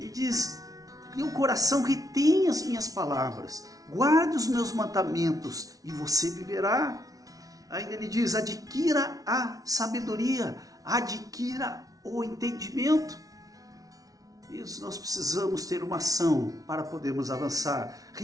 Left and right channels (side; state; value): left; late; 0.18 ms